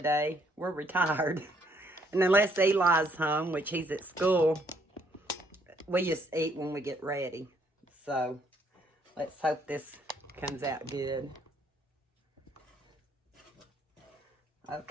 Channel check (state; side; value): normal; both; correlation 0.68